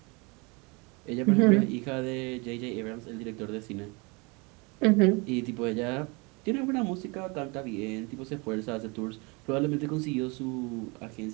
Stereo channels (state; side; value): quieter; left; 28.8 dB